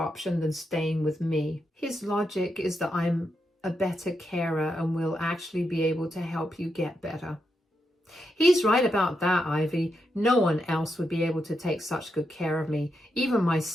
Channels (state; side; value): normal; both; correlation 0.84